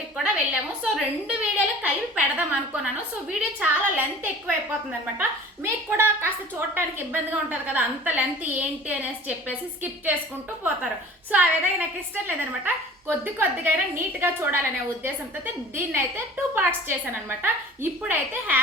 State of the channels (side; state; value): both; normal; correlation 0.44